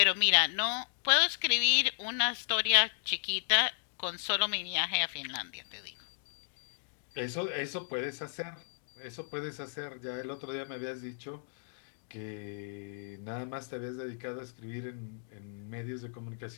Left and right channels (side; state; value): right; silent; digital silence